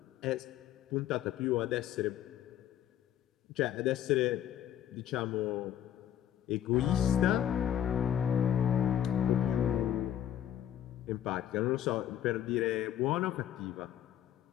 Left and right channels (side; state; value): right; quieter; 10.6 dB